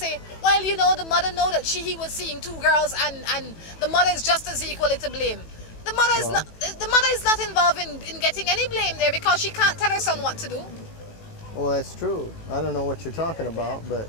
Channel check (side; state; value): right; late; 18 ms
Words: well, you know, the mother know that he was seeing 2 girls and the mother is just as equally to blame. The mother is not involved in getting any blame there because she can't tell her son what to do. Well, that's true. I don't know what you're talking about, but...